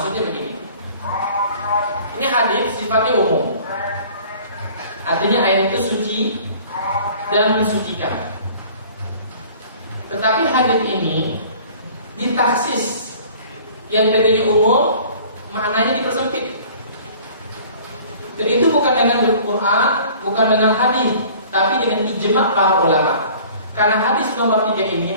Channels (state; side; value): inverted; both; correlation -0.49